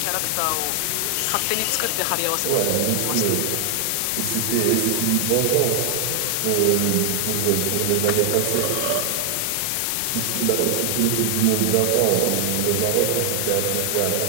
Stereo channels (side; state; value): both; different; correlation 0.00